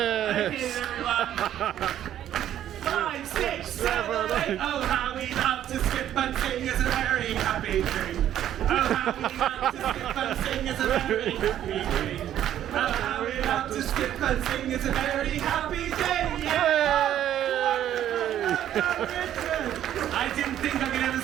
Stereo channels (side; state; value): left; quieter; 11.3 dB